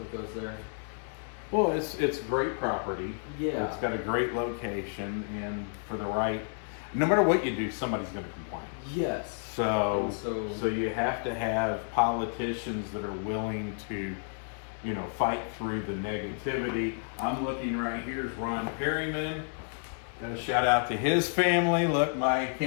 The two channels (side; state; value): right; silent; 57 dB below the other